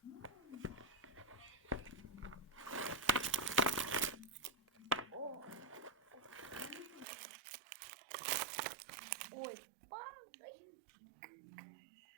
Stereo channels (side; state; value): left; drops out; at 7.1 s